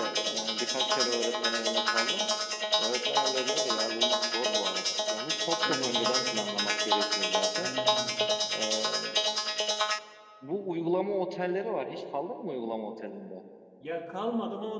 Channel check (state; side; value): identical; both; correlation 1.00